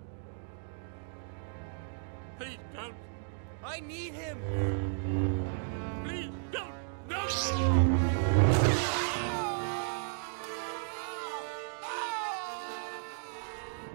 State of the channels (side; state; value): left; silent; digital silence